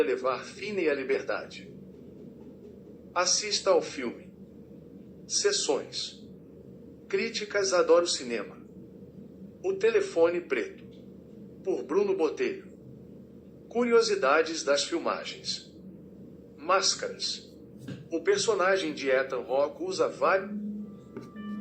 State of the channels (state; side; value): identical; both; correlation 1.00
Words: levar Finney à liberdade. Assista ao filme. Sessões. Críticas: Adoro Cinema. O Telefone Preto, por Bruno Botelho. Curiosidades das filmagens. Máscaras. O personagem de Ethan Hawke usa várias